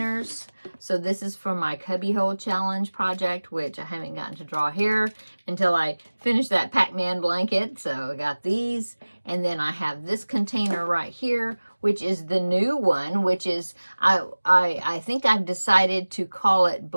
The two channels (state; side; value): inverted; both; correlation -1.00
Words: So this is for my Cubbyhole Challenge project, which I haven't gotten to draw here until I finish that Pac-Man blanket. So I got these, and then I have this container right here, which is the new one, which is, I think I've decided to call it